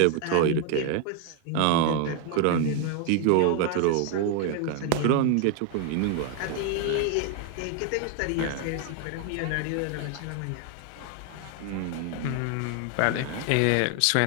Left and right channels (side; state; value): both; different; correlation 0.01